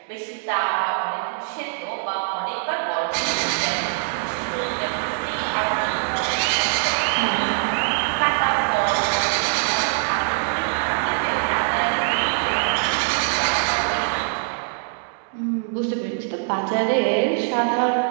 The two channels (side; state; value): left; silent; digital silence